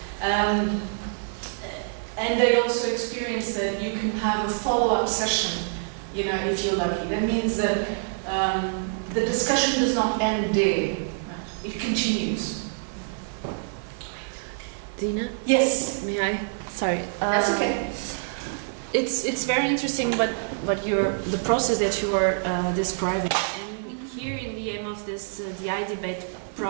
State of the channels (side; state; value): left; silent; digital silence